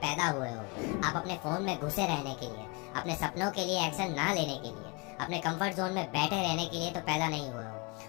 पैदा हुए हो। आप अपने फोन में घुसे रहने के लिए, अपने सपनों के लिए एक्शन ना लेने के लिए, अपने कंफर्ट जोन में बैठे रहने के लिए तो पैदा नहीं हुए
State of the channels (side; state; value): right; quieter; 29.6 dB